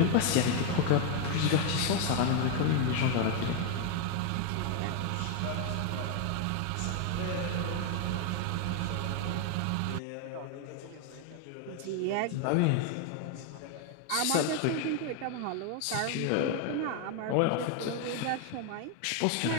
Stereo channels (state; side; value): different; both; correlation 0.01